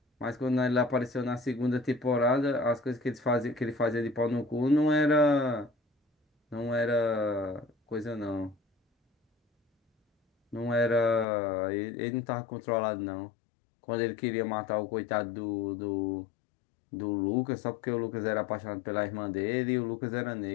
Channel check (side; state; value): right; drops out; at 11.2 s